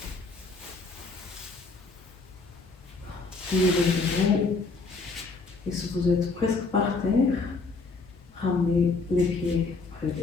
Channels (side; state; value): right; quieter; 4.0 dB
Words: pliez les genoux. Et si vous êtes presque par terre, ramenez les pieds près